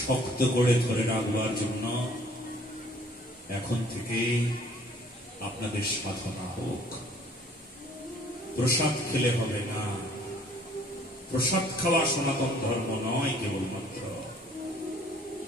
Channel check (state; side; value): normal; both; correlation 0.56